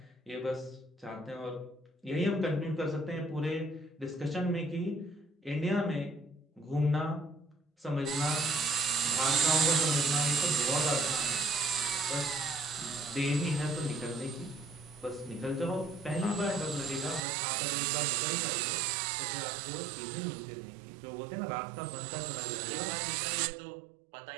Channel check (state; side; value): drops out; left; at 17.2 s